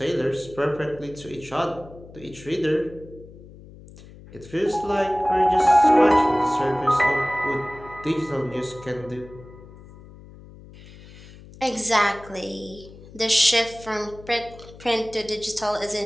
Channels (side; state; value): left; noise; hum, 19 dB below the sound